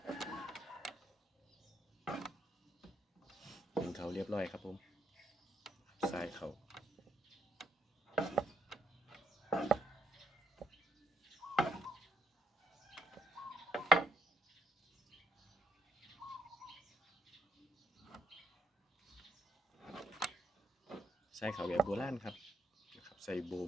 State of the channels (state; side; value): normal; both; correlation 0.73